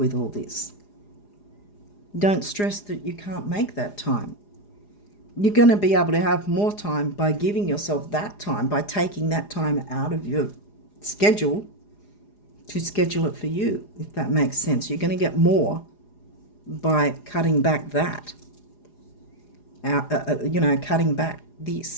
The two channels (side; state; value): right; late; 4.9 ms